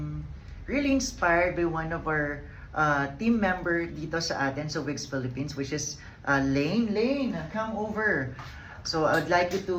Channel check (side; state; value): both; identical; correlation 1.00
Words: really inspired by one of our team member dito sa atin sa Wigs Philippines, which is Lane. Lane, come over. So I would like you